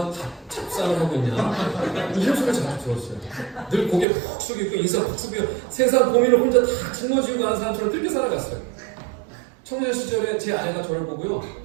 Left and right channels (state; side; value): drops out; left; at 4.0 s